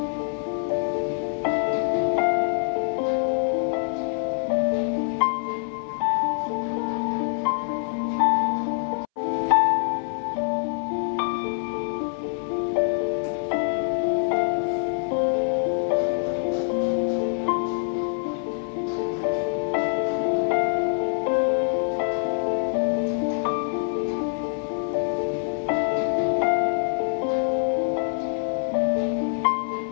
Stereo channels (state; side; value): silent; right; 62 dB below the other